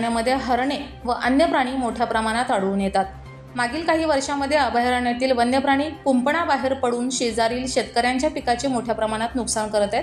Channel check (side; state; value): both; identical; correlation 1.00